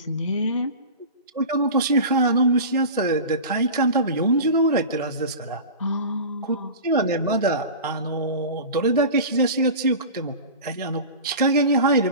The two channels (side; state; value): both; inverted; correlation -0.32